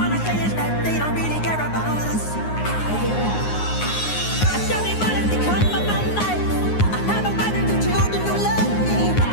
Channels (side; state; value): right; late; 9.6 ms